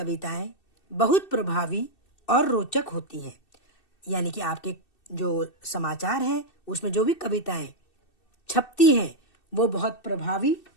बहुत प्रभावी और रोचक होती हैं। यानी कि आपके जो समाचार है उसमें जो भी कविताएं छपती हैं वो बहुत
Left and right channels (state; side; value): late; right; 2.6 ms